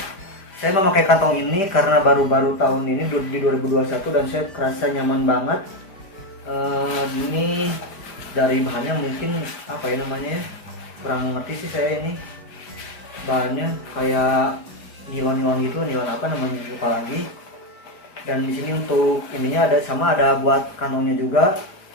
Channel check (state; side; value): late; right; 5.1 ms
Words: Saya memakai kantong ini karena baru-baru tahun ini di 2021 dan saya kerasa nyaman banget. Ini dari bahannya mungkin apa ya namanya ya, kurang ngerti sih saya ini. Bahannya kayak nilon gitu, nilon apa namanya lupa lagi. Dan di sini untuk ininya ada buat kantongnya juga.